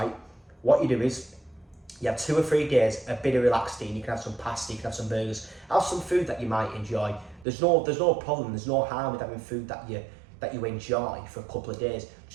what you do is you have 2 or 3 days, a bit of relaxed eating. You can have some pasta, you can have some burgers, have some food that you might enjoy. There's no problem, there's no harm with having food that you enjoy for a couple of days.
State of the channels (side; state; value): left; drops out; at 7.5 s